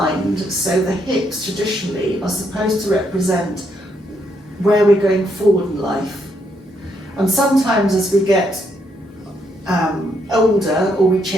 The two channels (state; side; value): normal; both; correlation 0.75